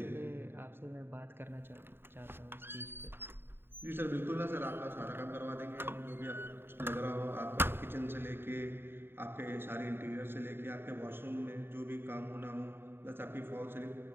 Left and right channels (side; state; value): left; late; 0.11 ms